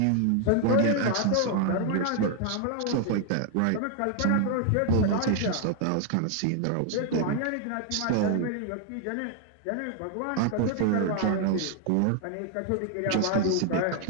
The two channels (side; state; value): both; different; correlation 0.00